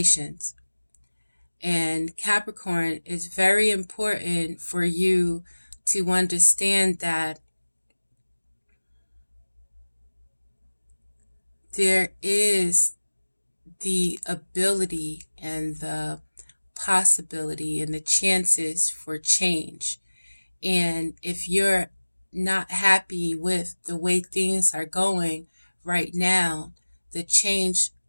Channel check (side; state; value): both; inverted; correlation -1.00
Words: And Capricorn, is very important for you to understand that there is the ability and the possibility and the chances for change. And if you're not happy with the way things are going right now, the change